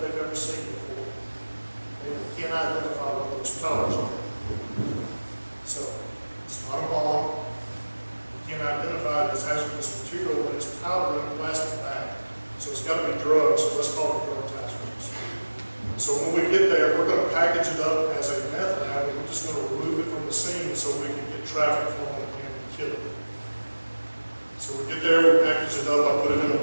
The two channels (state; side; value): inverted; both; correlation -1.00